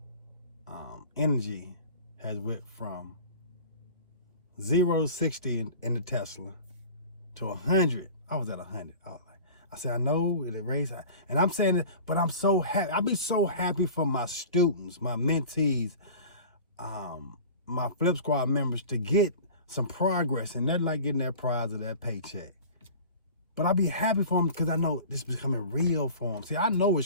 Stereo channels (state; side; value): inverted; both; correlation -0.39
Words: energy has went from 0 to 60 in the Tesla to 100. I was at 100. I said, I know it raised, and I'm saying it, but I'm so happy. I'll be so happy for my students, my mentees, my Flip Squad members to get some progress, and they're like getting that prize of that paycheck. But I'll be happy for them because I know this is becoming real for them. See, I know